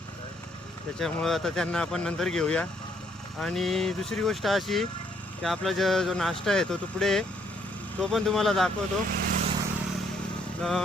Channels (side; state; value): both; normal; correlation 0.69